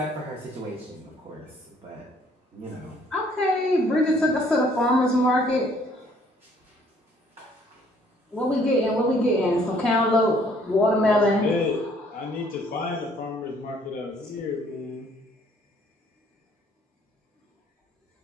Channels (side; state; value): both; normal; correlation 0.62